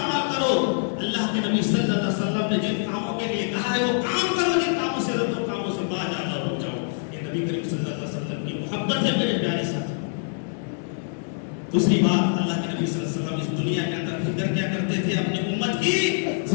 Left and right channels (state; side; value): silent; right; digital silence